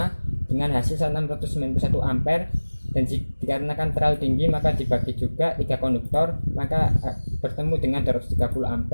dengan hasil 691 ampere, dan dikarenakan terlalu tinggi maka dibagi juga 3 konduktor, maka bertemu dengan 230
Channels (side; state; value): both; inverted; correlation -1.00